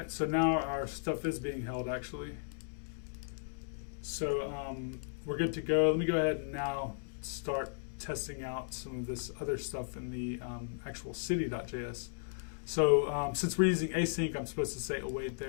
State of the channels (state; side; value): silent; right; digital silence